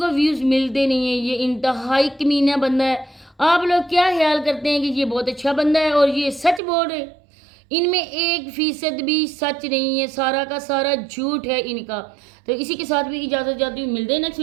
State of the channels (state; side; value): drops out; left; at 6.6 s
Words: ویوز ملتے نہیں ہیں. یہ انتہائی کمینہ بندہ ہے. آپ لوگ کیا خیال کرتے ہیں کہ یہ بہت اچھا بندہ ہے اور یہ سچ بول رہے؟ ان میں 1% بھی سچ نہیں ہے, سارا کا سارا جھوٹ ہے ان کا. تو اسی کے ساتھ بھی اجازت چاہتی ہوں, ملتے ہیں نیکسٹ